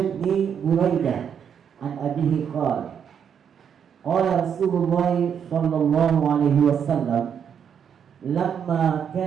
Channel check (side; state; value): left; quieter; 7.9 dB